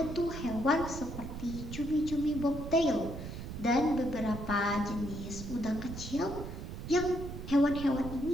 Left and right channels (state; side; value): noise; right; rumble, 8 dB below the sound